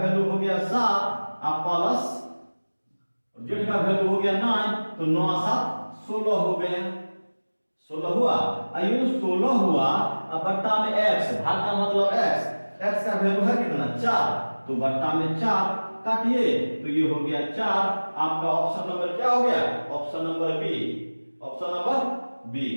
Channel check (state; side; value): inverted; both; correlation -1.00